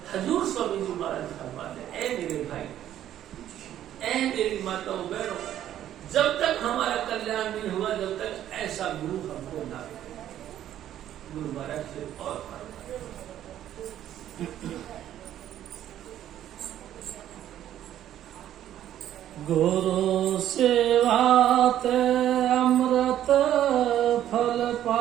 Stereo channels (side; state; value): left; quieter; 11.6 dB